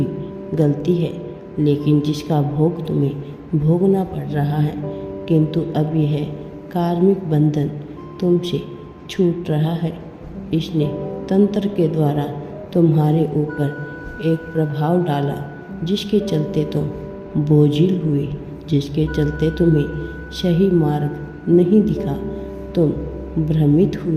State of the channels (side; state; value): both; identical; correlation 1.00